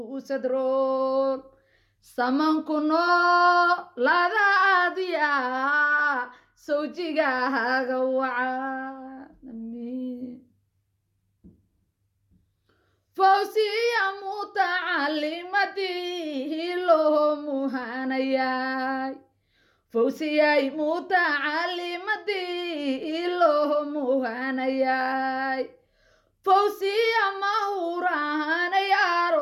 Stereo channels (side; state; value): both; identical; correlation 1.00